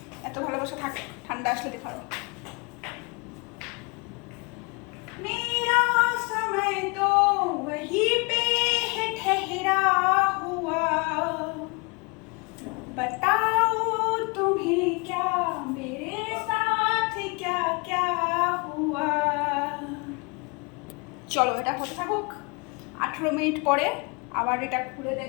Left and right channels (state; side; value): quieter; right; 31.0 dB